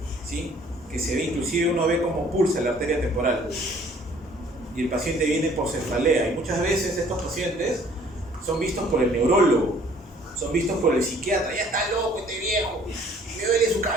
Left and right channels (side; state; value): both; normal; correlation 0.56